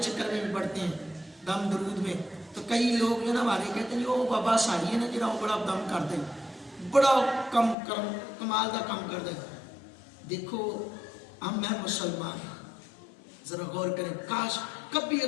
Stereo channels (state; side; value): drops out; right; at 7.8 s